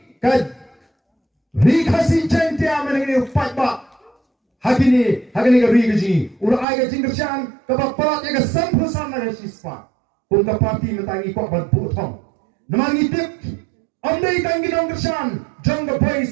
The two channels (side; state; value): left; drops out; at 6.7 s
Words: ka rikasi jente amengi upat ba hagini ka rikaji ura ai ka jingkersyan ka baparat ya ka sampusan na sispa kung ka parti mentangi ko ban putong namangi tip andai kang ginong kersyan jong the